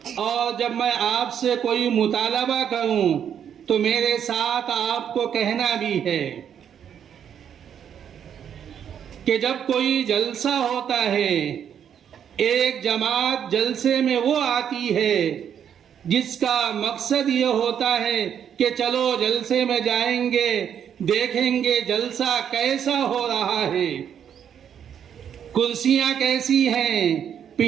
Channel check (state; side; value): quieter; left; 8.7 dB